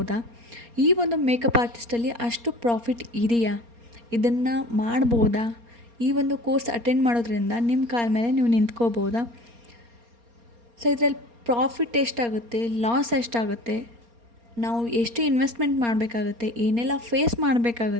ಈ ಒಂದು ಮೇಕಪ್ ಆರ್ಟಿಸ್ಟಲ್ಲಿ ಅಷ್ಟು ಪ್ರಾಫಿಟ್ ಇದೆಯಾ? ಇದನ್ನು ಮಾಡ್ಬೋದಾ? ಈ ಒಂದು ಕೋರ್ಸ್ ಅಟೆಂಡ್ ಮಾಡೋದ್ರಿಂದ ನಿಮ್ಮ ಕಾಲ ಮೇಲೆ ನೀವು ನಿಂತ್ಕೋಬೋದಾ? ಸೊ ಇದರಲ್ಲಿ ಪ್ರಾಫಿಟ್ ಎಷ್ಟಾಗುತ್ತೆ, ಲಾಸ್ ಎಷ್ಟಾಗುತ್ತೆ, ನಾವು ಎಷ್ಟು ಇನ್ವೆಸ್ಟ್ಮೆಂಟ್ ಮಾಡಬೇಕಾಗುತ್ತೆ, ಏನೆಲ್ಲ ಫೇಸ್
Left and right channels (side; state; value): left; late; 4.3 ms